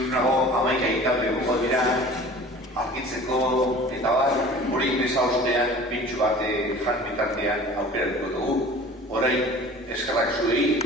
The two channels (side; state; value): both; normal; correlation 0.43